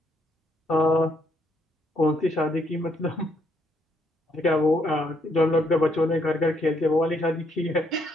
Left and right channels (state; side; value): normal; both; correlation 0.73